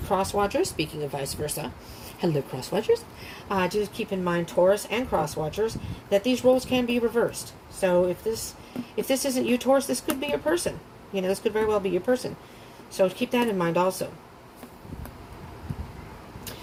watchers, speaking of vice versa, hello cross watchers, just keep in mind, Taurus and cross watchers, that these roles can be reversed. So if this isn't you, Taurus, this could be your person. You know, this could very well be your person. So keep that in mind also.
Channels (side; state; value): both; identical; correlation 1.00